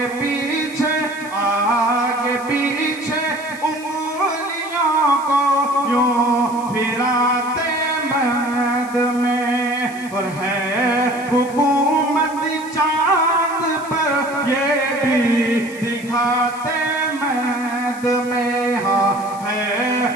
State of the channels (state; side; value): noise; left; hiss, 20 dB below the sound